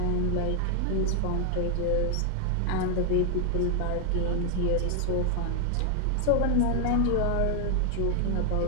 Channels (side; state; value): both; different; correlation 0.00